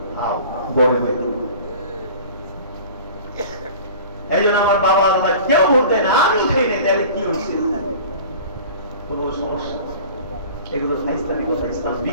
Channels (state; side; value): inverted; both; correlation -0.42